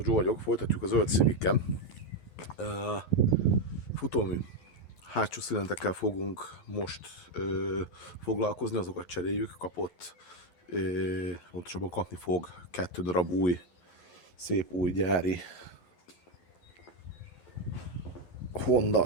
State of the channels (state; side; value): late; right; 11 ms